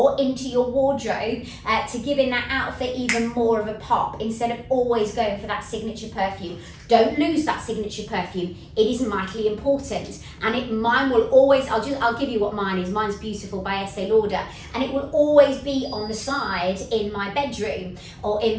into your wardrobe to giving that outfit even more of a pop instead of always going for that signature perfume. Don't lose that signature perfume. It is vitally important, and mine will always. I'll give you what mine is. Mine's Beautiful by Estee Lauder, and it will always be on the side in my bedroom or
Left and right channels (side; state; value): both; identical; correlation 1.00